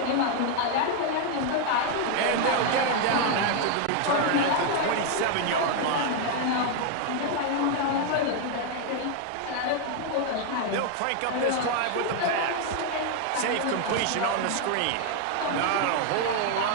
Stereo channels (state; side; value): different; both; correlation 0.00